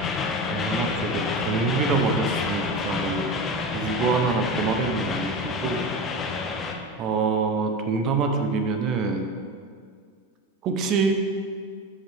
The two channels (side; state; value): both; normal; correlation 0.26